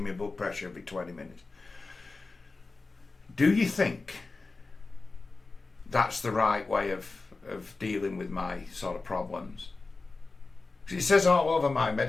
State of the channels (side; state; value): right; quieter; 3.7 dB